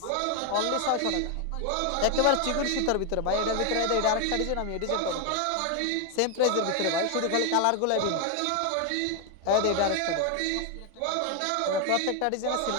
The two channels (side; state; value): both; different; correlation 0.01